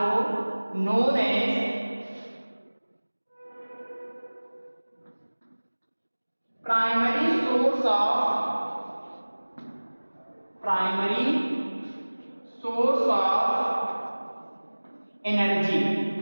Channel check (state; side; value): inverted; both; correlation -1.00